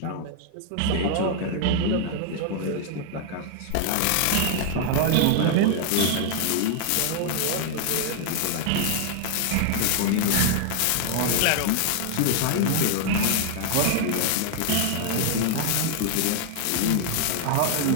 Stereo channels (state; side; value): different; both; correlation 0.00